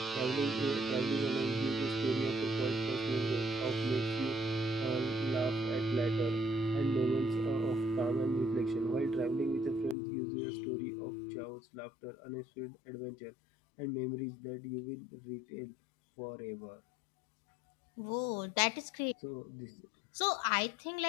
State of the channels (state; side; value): drops out; right; at 10.0 s